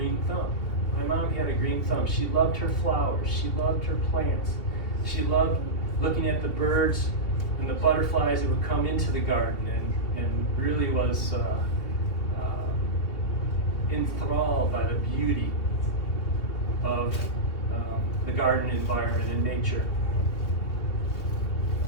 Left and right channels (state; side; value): late; right; 3.1 ms